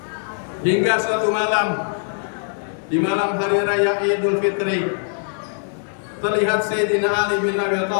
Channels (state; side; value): silent; right; digital silence